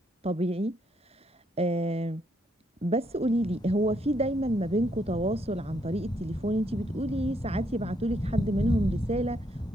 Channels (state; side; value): normal; both; correlation 0.74